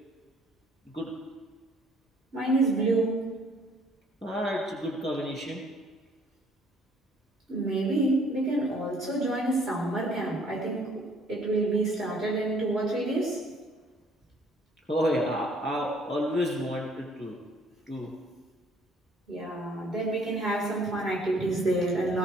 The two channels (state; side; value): normal; both; correlation 0.61